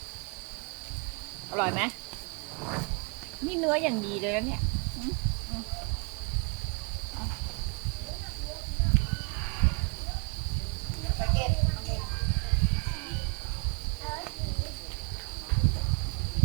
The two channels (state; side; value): quieter; left; 35.4 dB